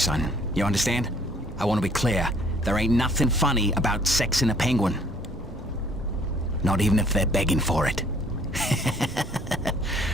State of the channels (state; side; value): normal; both; correlation 0.59